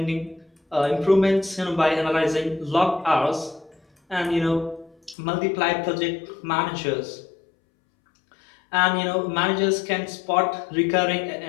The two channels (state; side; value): drops out; right; at 5.2 s